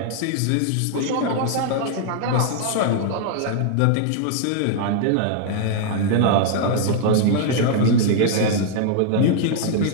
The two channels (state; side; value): different; both; correlation -0.01